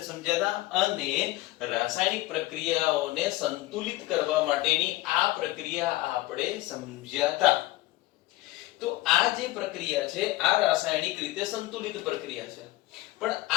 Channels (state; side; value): quieter; right; 18.1 dB